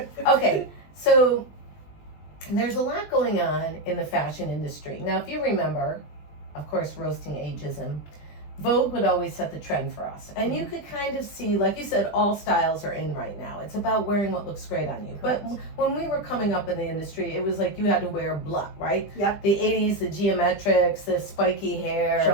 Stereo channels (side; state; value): right; late; 20 ms